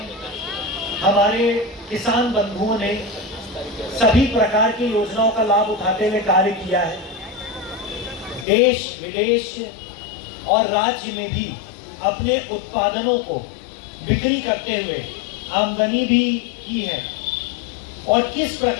हमारे किसान बंधुओं ने सभी प्रकार की योजनाओं का लाभ उठाते हुए कार्य किया है। देश विदेश और राज्य में भी अपने उत्पादनों को बिक्री करते हुए आमदनी भी की है, और किस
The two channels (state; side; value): drops out; right; at 8.5 s